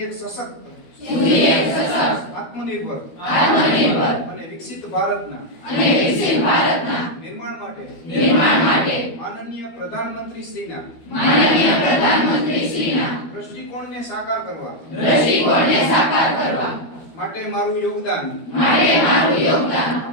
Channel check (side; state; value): right; late; 12 ms